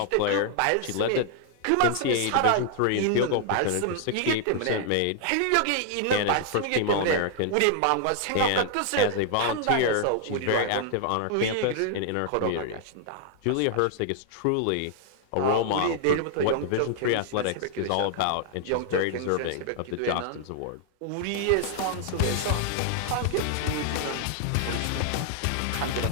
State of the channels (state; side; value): different; both; correlation 0.00